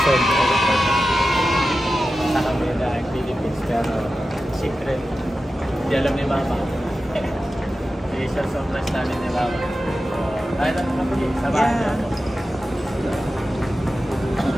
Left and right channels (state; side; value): normal; both; correlation 0.93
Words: Sa kami na Philippines pero secret. Hindi alam ni Mama. Isa surprise namin ni Mama. Tayo lang kapugi. Samahan niyo ako.